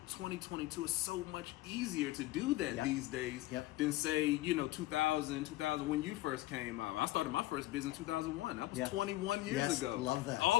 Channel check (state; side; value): quieter; right; 17.4 dB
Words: 2022 is so much easier to do that these days than say, 2000 when you first came out. I started my first business in 2001. That was 21 years ago. Love that.